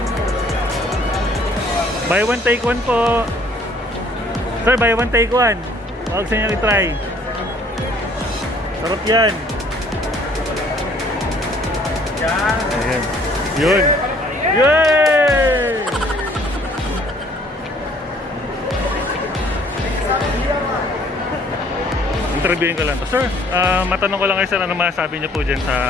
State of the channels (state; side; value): normal; both; correlation 0.59